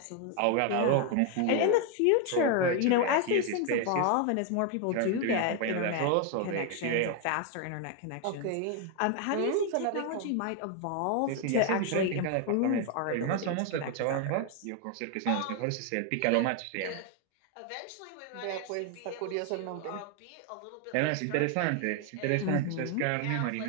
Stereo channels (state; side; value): different; both; correlation 0.01